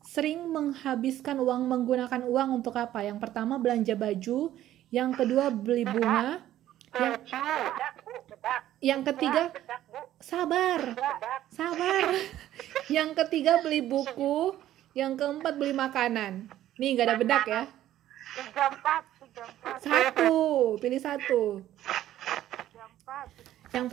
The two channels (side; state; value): left; quieter; 13.0 dB